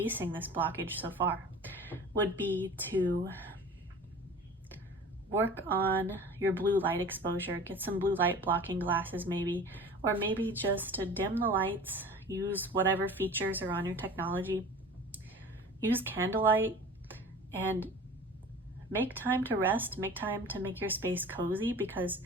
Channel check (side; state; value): both; normal; correlation 0.40